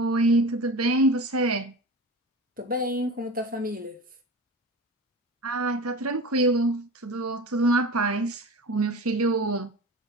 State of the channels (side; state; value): both; normal; correlation 0.32